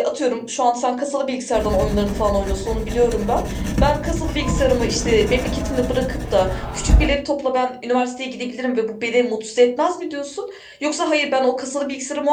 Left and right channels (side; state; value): both; identical; correlation 1.00